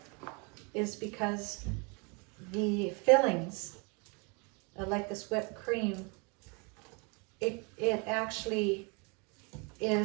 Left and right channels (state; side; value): quieter; left; 32.4 dB